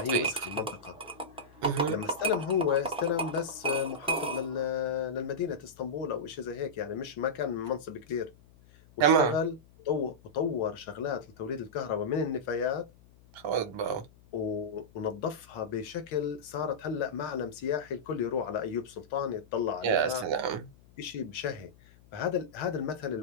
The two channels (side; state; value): left; noise; hum, 25 dB below the sound